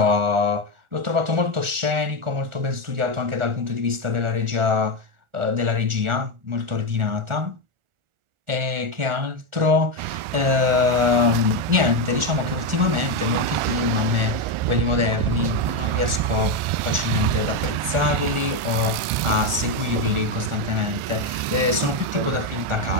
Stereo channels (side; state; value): left; late; 1.4 ms